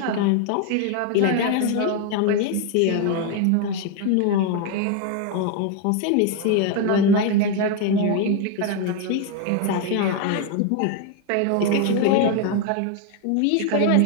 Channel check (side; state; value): both; different; correlation 0.01